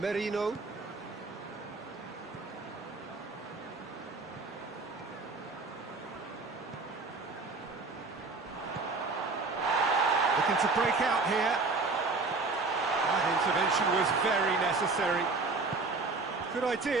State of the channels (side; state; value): left; quieter; 3.8 dB